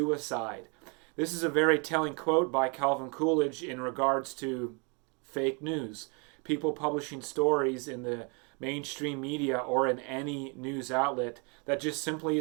This is a very telling quote by Calvin Coolidge in regards to fake news. People publishing stories in the mainstream media or in any news outlet that just simply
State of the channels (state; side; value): quieter; left; 33.6 dB